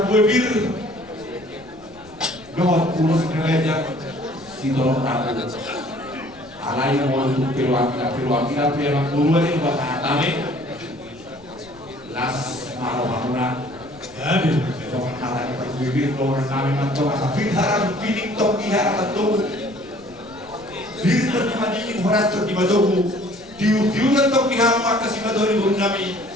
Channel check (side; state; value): left; noise; rumble, 25 dB below the sound